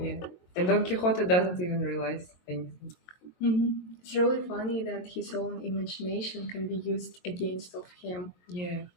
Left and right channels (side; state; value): right; late; 22 ms